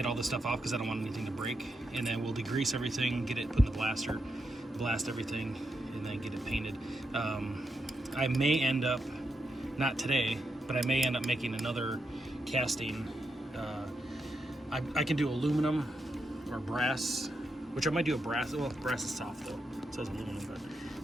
all this stuff off because I don't want anything to break. And then we'll degrease everything, get it put in the blaster, blast everything, and then get it painted. I may end up, not today, but I may end up making another casting. I can do aluminum or brass, which I might do a brass. Well, brass is soft though. It says aluminum,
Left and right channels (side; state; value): both; normal; correlation 0.84